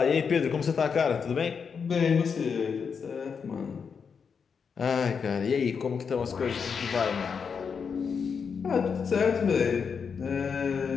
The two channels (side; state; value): right; quieter; 6.1 dB